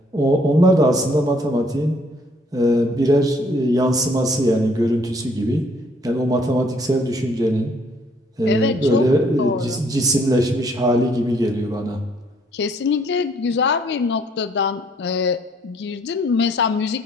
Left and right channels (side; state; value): both; normal; correlation 0.63